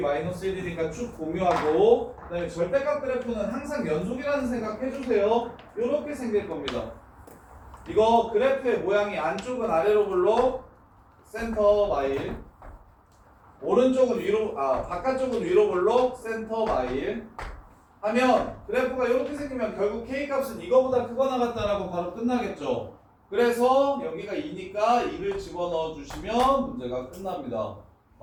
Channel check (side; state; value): both; identical; correlation 1.00